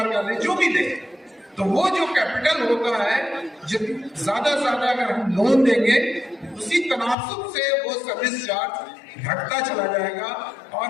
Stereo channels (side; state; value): right; drops out; at 7.2 s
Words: का ले, जो भी ले। तो वो जो कैपिटल होता है, ज्यादा से ज्यादा अगर हम लोन देंगे, उसी तनासुब से वो सर्विस चार्ज घटता चला जाएगा